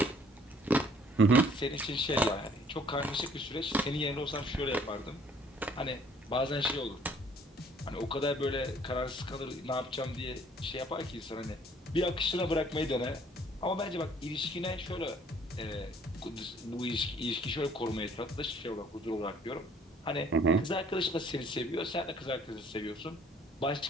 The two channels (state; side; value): normal; both; correlation 0.58